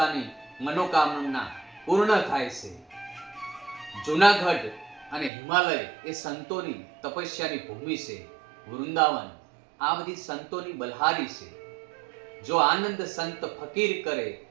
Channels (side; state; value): left; drops out; at 5.3 s